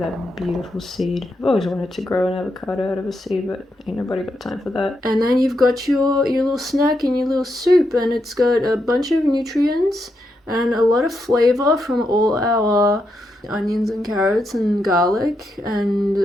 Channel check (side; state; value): both; normal; correlation 0.83